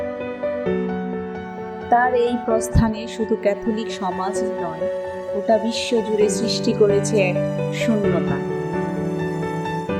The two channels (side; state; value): both; identical; correlation 1.00